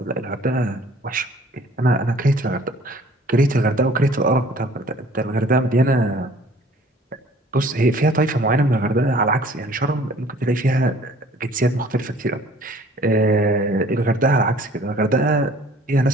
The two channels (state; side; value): normal; both; correlation 0.52